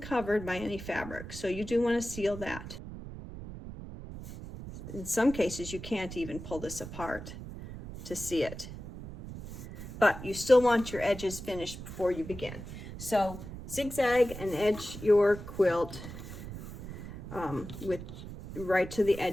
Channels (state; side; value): noise; right; rumble, 11 dB below the sound